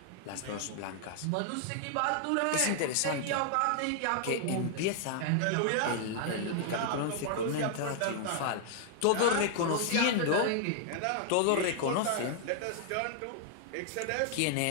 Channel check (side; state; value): both; different; correlation 0.00